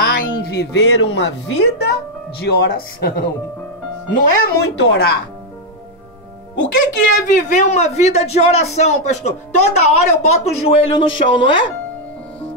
em viver uma vida de oração. Não é muito orar. O que é viver uma vida de oração, pastor? Toda hora eu boto o joelho no chão, não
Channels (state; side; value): normal; both; correlation 0.00